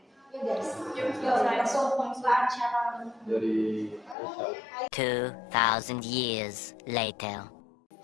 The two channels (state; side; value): drops out; right; at 4.2 s